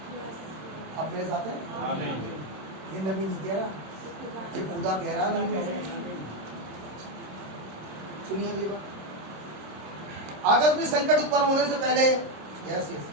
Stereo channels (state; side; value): late; left; 26 ms